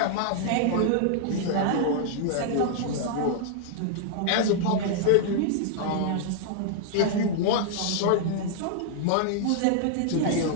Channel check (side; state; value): both; different; correlation -0.01